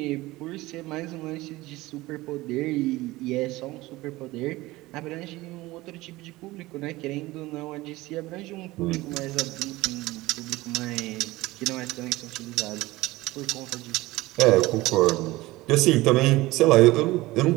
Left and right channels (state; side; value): quieter; left; 19.2 dB